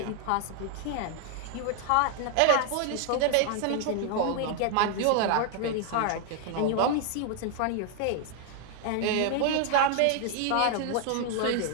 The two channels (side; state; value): both; different; correlation 0.00